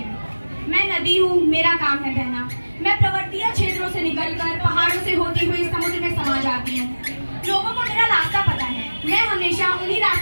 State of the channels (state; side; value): inverted; both; correlation -1.00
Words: मैं नदी हूँ, मेरा काम है बहना। मैं पर्वतीय क्षेत्रों से निकलकर पहाड़ों से होती हुई समुद्र में समा जाती हूँ। लोगों को मेरा रास्ता पता है। मैं हमेशा उन्हीं